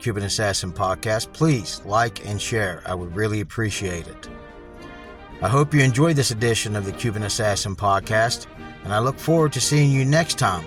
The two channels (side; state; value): both; identical; correlation 1.00